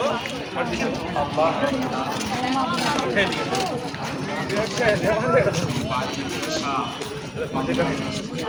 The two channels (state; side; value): identical; both; correlation 1.00